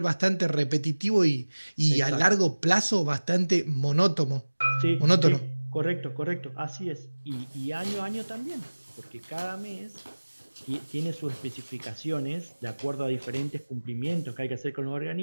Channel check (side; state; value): both; inverted; correlation -1.00